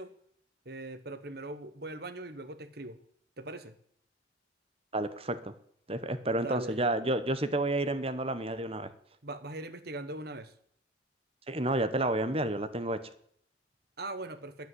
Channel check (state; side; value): normal; both; correlation 0.32